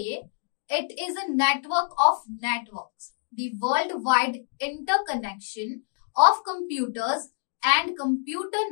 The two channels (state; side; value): silent; right; digital silence